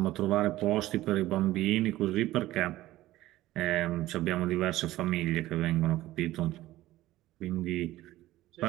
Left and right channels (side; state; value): left; quieter; 16.0 dB